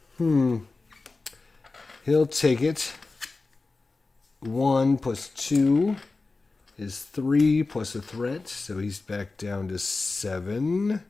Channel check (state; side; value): quieter; right; 3.7 dB